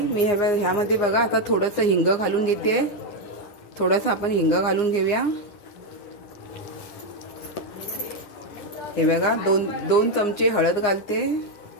मी ह्यामध्ये बघा आता थोडंसं हिंग घालून घेते. थोडंसं आपण हिंग घालून घेऊया. हे बघा, 2 चमचे हळद घालते.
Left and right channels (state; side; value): late; right; 9.7 ms